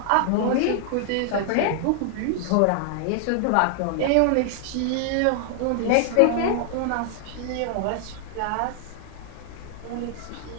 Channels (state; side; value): different; both; correlation 0.00